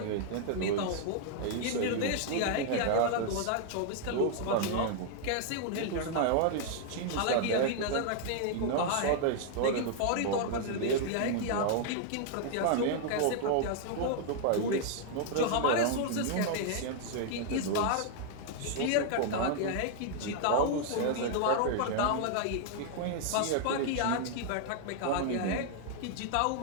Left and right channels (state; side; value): different; both; correlation 0.00